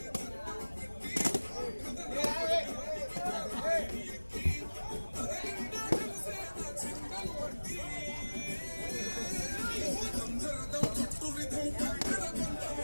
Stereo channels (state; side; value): inverted; both; correlation -1.00